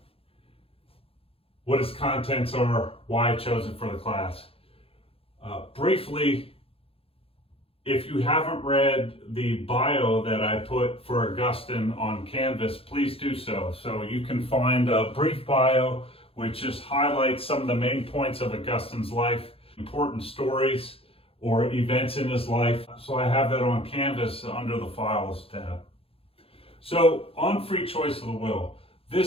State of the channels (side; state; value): right; late; 0.27 ms